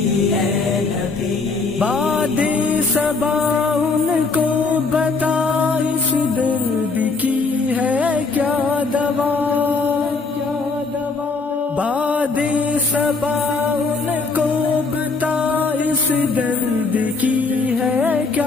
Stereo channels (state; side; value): quieter; right; 4.1 dB